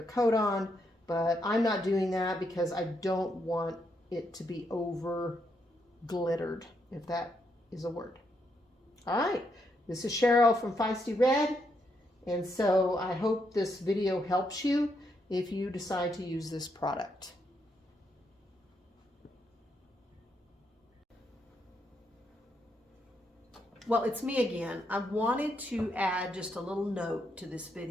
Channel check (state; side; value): normal; both; correlation 0.78